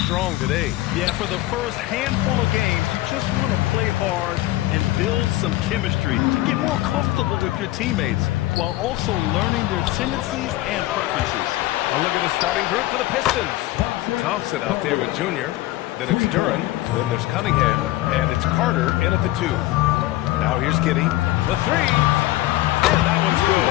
today. Yeah, for the first handful of games, you just want to play hard and build some chemistry. Get more comfortable with your teammates while also learning their tendencies and preferences. A look at the starting group for the Pistons. Thompson out there with Junior. Then it's Duran. Then there's Cunningham. And it's Carter in at the 2. Now here's Giddey. The 3. And that one's good.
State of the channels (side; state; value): right; quieter; 16.9 dB